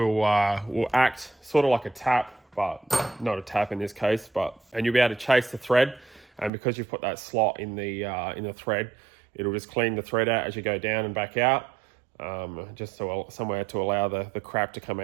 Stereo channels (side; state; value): left; drops out; at 6.5 s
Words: act sort of like a tap, but not a tap in this case. And you'll be able to chase the thread, and because you've put that slot in the thread, it'll just clean the thread out as you go down and back out, just so somewhere to allow the crap to come